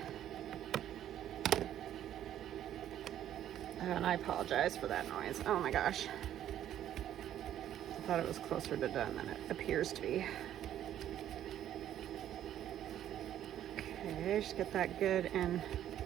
And I apologize for that noise. Oh my gosh, I thought it was closer to done than it appears to be. Okay, just get that good and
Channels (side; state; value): left; quieter; 11.2 dB